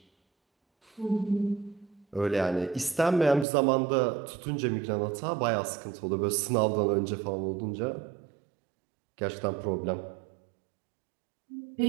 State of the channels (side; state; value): left; drops out; at 3.5 s